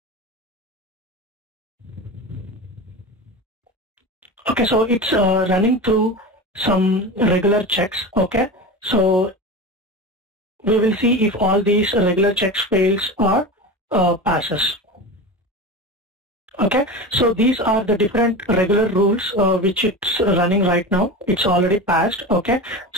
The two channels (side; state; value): both; normal; correlation 0.27